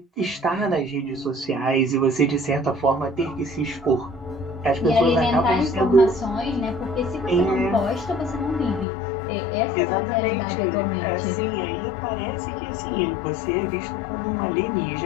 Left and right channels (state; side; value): drops out; right; at 8.8 s